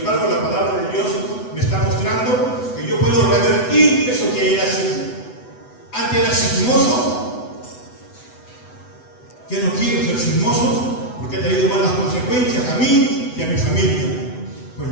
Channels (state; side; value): late; right; 8.0 ms